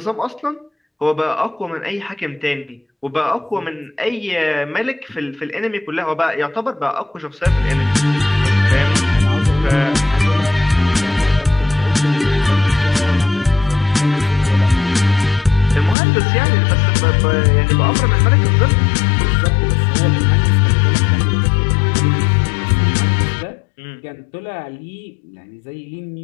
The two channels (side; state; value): right; drops out; at 16.0 s